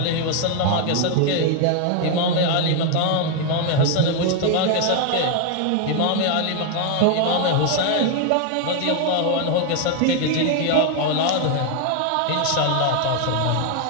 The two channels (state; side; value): different; both; correlation 0.01